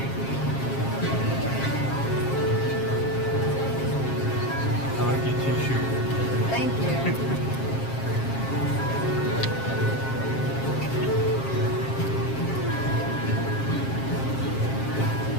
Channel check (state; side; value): late; right; 7.5 ms